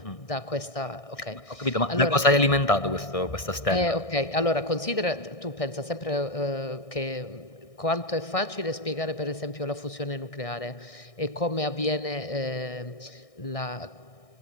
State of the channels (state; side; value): late; right; 1.6 ms